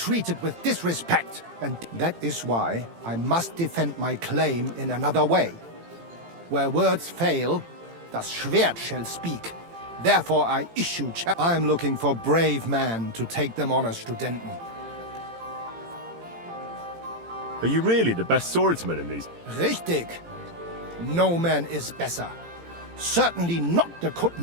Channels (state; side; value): late; left; 18 ms